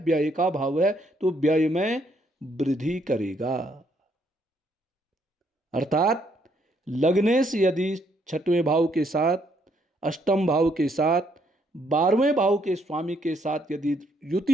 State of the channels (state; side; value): normal; both; correlation 0.71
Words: का भाव है, तो व्यय में वृद्धि करेगा। अर्थात लग्नेश यदि छठवें भाव के साथ, अष्टम भाव के साथ, 12वें भाव के स्वामी के साथ यदि